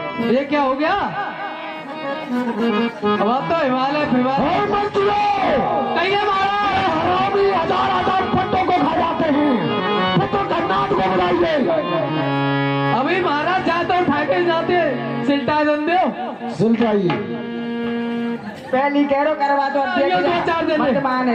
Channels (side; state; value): both; identical; correlation 1.00